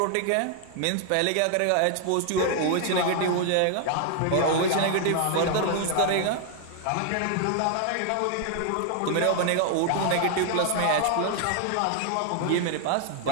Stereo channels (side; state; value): both; different; correlation 0.00